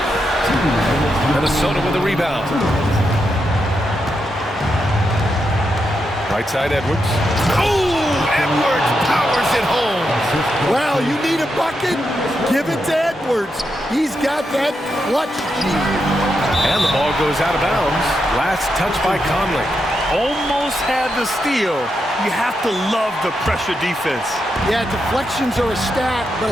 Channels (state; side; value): normal; both; correlation 0.84